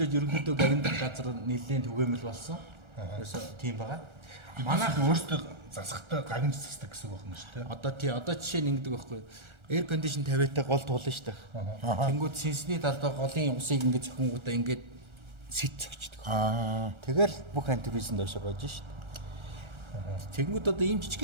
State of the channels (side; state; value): left; late; 1.4 ms